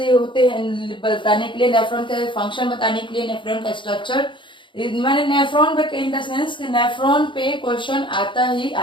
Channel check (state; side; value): late; right; 0.24 ms